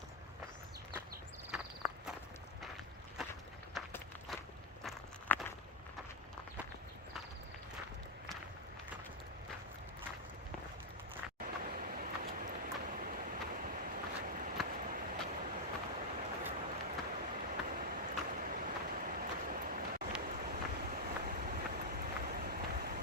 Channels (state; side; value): normal; both; correlation -0.03